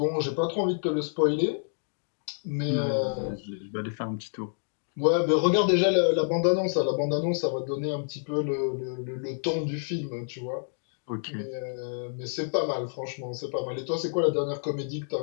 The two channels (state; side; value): silent; right; digital silence